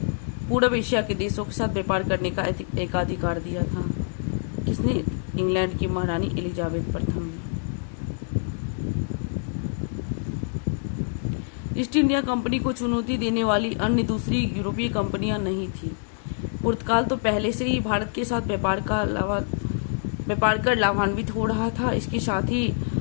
पूर्व एशिया के देशों के साथ व्यापार करने का एकाधिकार दिया था। किसने? इंग्लैंड की महारानी एलिजाबेथ प्रथम ने। ईस्ट इंडिया कंपनी को चुनौती देने वाली अन्य दूसरी यूरोपीय कंपनियां नहीं थी। पुर्तगाल तो पहले से ही भारत के साथ व्यापार कर लाभान्वित हो रहा था। इसके साथ ही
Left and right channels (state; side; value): silent; right; digital silence